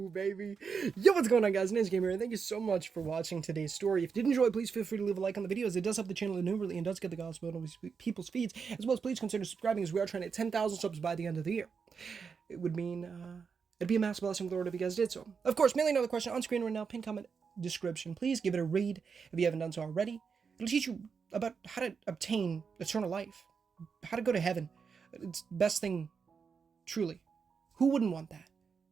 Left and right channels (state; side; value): quieter; left; 5.8 dB